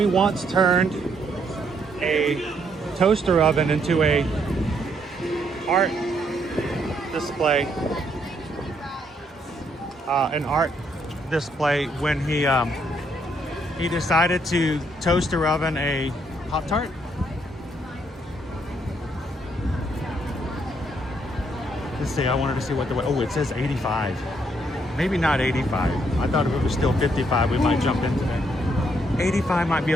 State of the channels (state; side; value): normal; both; correlation 0.72